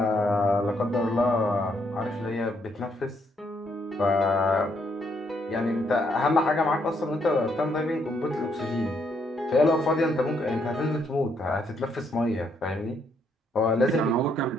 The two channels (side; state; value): both; normal; correlation 0.73